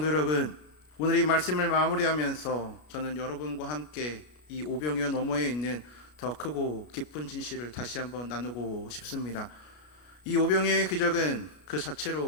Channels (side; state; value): right; late; 33 ms